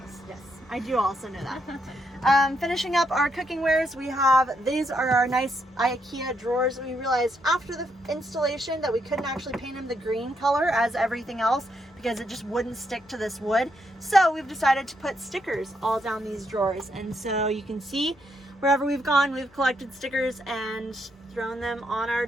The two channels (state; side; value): normal; both; correlation 0.78